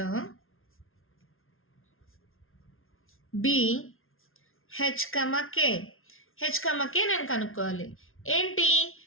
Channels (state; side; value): late; right; 0.61 ms